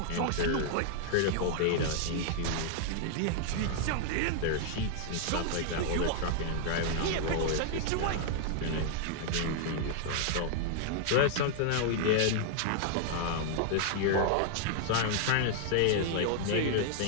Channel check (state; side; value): different; both; correlation -0.01